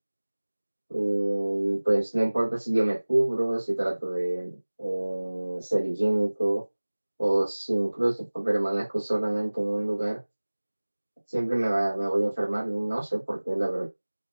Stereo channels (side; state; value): both; inverted; correlation -1.00